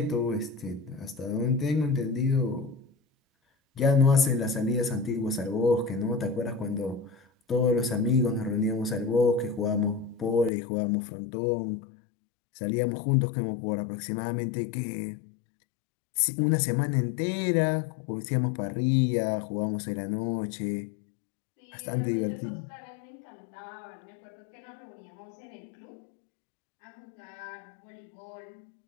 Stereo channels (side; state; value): right; drops out; at 10.5 s